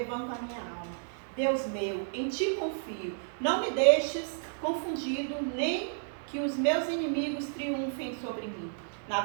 a minha alma. Deus meu, em ti confio. Não me deixes confundido, nem que os meus inimigos triunfem sobre mim. Na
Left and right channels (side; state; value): left; silent; digital silence